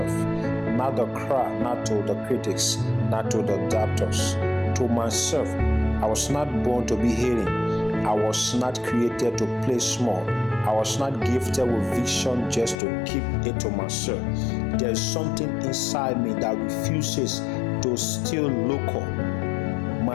not the crowd, not to the critics, not to the doctors. To myself, I was not born to be hating. I was not created to play small. I was not gifted with vision just to keep it to myself. There's something inside me that refuses to still local.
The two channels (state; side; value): drops out; right; at 12.8 s